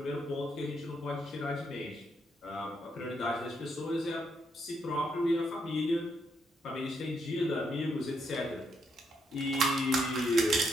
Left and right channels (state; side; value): normal; both; correlation 0.77